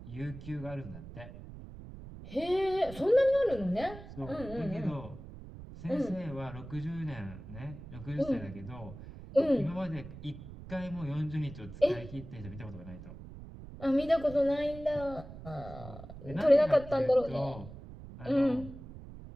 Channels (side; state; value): right; noise; rumble, 14 dB below the sound